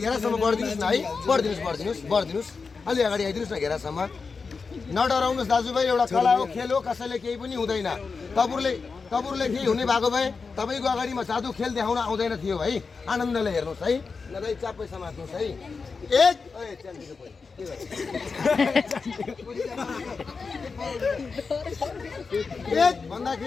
बढिदिनुस् न है बढिदिनुस् अलि अगाडि आइदिनुस् न घेरासम्म नडराउनुस् दाजुभाइ एउटा कला हो खेल हो कसैले केही पनि हुँदैन तपाईँहरूले केही हुने भएको भए तपाईँको अगाडिमा जादु खेल देखाउन आउँदैन थियो है आनन्दले हेर्नुहोस् है नदाइ चापै समात्नुहोस् है एक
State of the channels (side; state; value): right; quieter; 4.8 dB